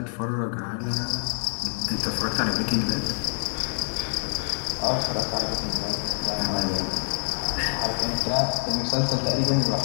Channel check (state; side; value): silent; right; 61 dB below the other